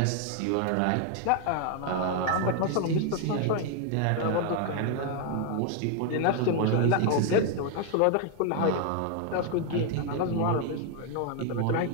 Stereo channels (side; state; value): both; different; correlation 0.00